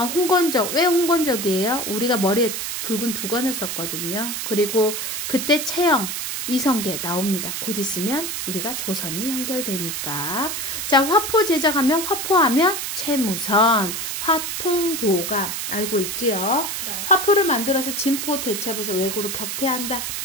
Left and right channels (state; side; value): noise; right; hiss, 4 dB below the sound